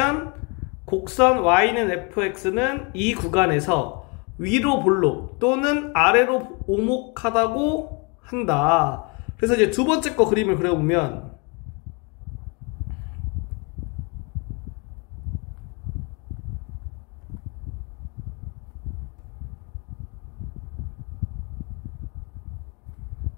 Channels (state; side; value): quieter; right; 32.4 dB